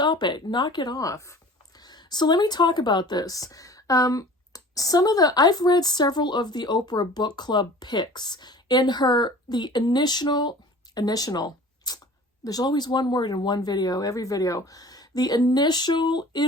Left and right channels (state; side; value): normal; both; correlation 0.44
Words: it, knock it off. So let me talk about this. I've read several of the Oprah book club picks. In the initial, there's always one word in one video, every video. The initial